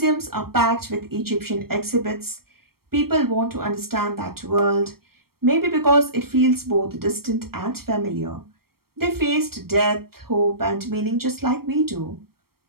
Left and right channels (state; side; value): late; left; 0.94 ms